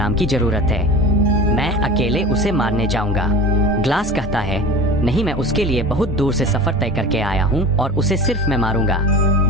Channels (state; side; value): normal; both; correlation 0.35